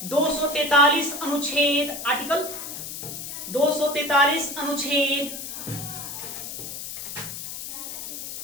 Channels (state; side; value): noise; left; hiss, 8 dB below the sound